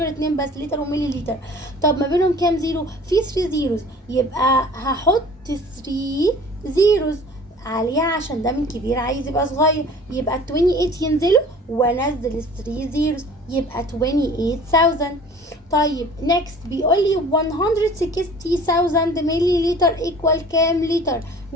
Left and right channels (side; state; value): both; normal; correlation 0.46